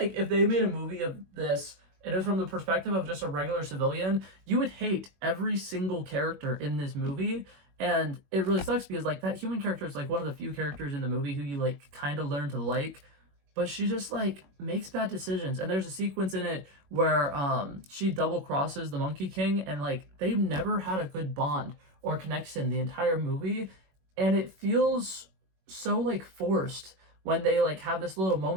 if they made a movie of this and it was from the perspective of just a regular civilian, you would hate every single character in this movie. And it really sucks because like that human character is like one of the few characters in the movie who you like kind of learn to like, but she just like makes bad decisions. And there's a sequence in it where she double crosses the Monkey King, and like they've never had a good bond or connection the entire movie, and it feels so like forced when they like have this little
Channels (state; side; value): late; left; 21 ms